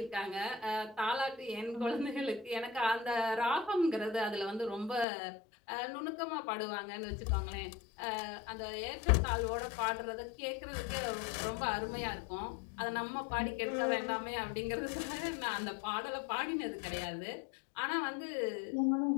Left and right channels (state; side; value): drops out; right; at 5.1 s